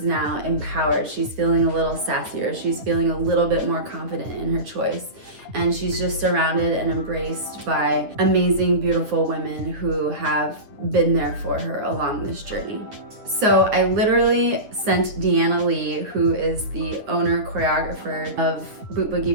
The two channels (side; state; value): left; late; 9.5 ms